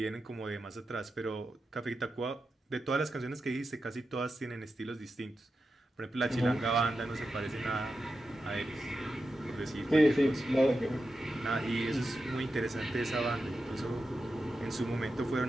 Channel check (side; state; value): both; normal; correlation 0.90